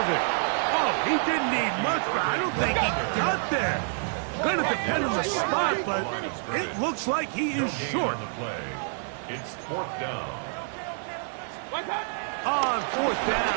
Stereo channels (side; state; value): left; silent; 60 dB below the other